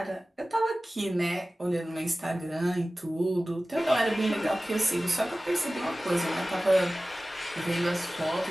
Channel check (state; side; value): normal; both; correlation 0.97